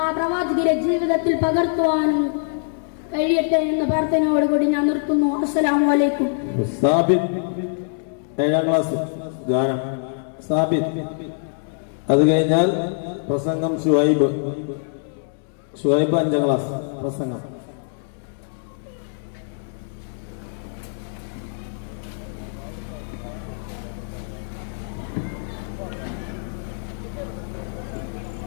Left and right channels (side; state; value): right; silent; 63 dB below the other